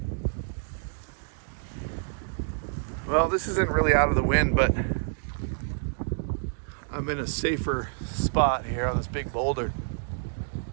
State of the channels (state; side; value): silent; left; 59 dB below the other